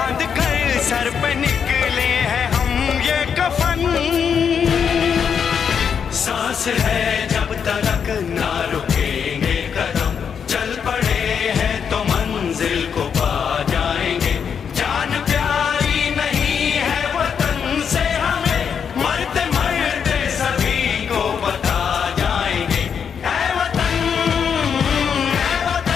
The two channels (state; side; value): quieter; right; 7.1 dB